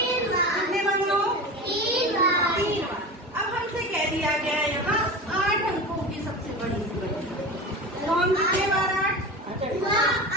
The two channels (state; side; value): normal; both; correlation 0.29